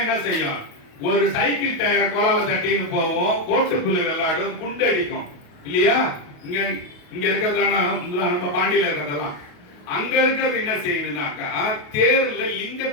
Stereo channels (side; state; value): right; late; 28 ms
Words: என்ன செய்யும்? ஒரு சைக்கிள் டயர் கோலால தட்டின்னு போவோம், கோட்டு புல்லு விளையாடும், குண்டு அடிக்கும் இல்லையா? இங்க இருக்கிறதெல்லாம் நம்ம பாண்டியில இருக்கிறதெல்லாம். அங்க இருக்கிறது என்ன செய்யுதுனாக்கா, தேர்ல